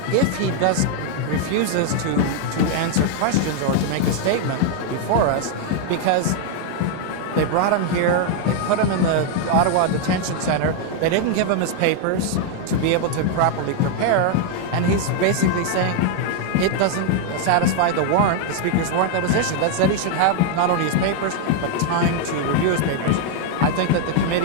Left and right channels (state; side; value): different; both; correlation 0.00